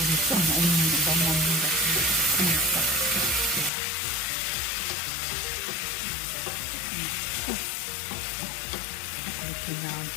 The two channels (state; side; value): drops out; right; at 3.7 s